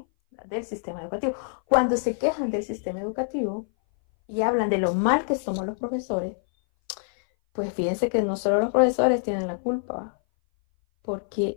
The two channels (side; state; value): right; silent; 58 dB below the other